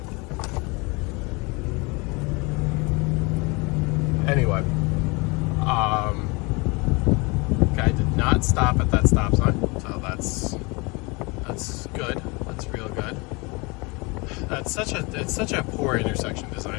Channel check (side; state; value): right; quieter; 27.7 dB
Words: Anyway, guy did not stop at that stop sign, so that's good. That's real good. It's such a poor intersection